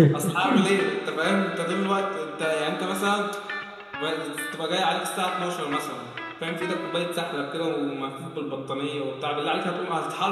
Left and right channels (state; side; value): identical; both; correlation 1.00